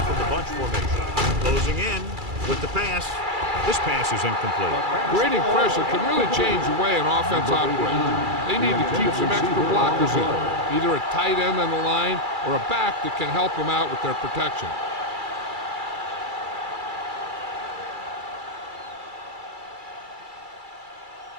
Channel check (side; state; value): left; late; 2.3 ms